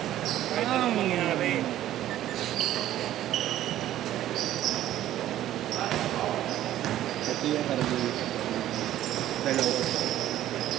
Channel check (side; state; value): left; quieter; 13.0 dB